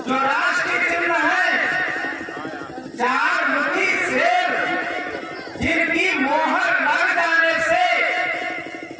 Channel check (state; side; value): identical; both; correlation 1.00